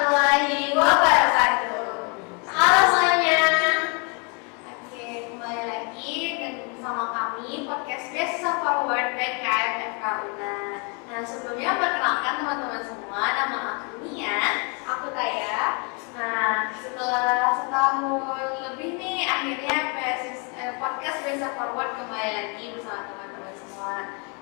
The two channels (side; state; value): right; quieter; 34.8 dB